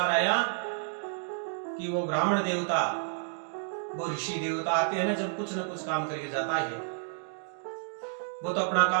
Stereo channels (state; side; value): silent; left; digital silence